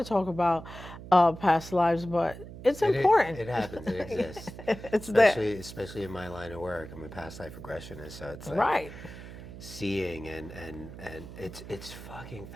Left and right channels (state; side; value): noise; right; hum, 13 dB below the sound